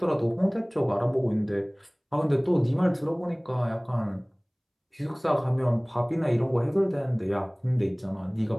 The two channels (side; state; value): both; identical; correlation 1.00